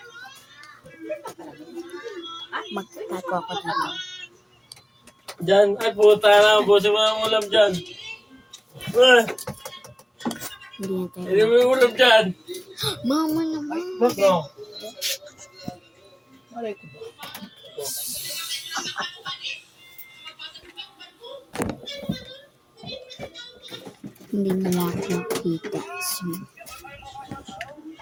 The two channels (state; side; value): identical; both; correlation 1.00